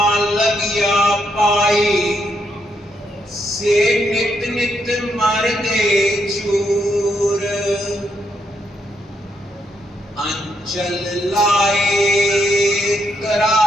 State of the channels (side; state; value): both; normal; correlation 0.77